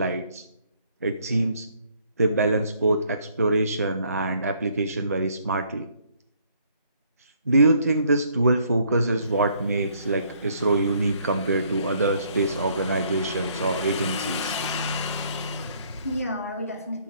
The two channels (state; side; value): inverted; both; correlation -0.65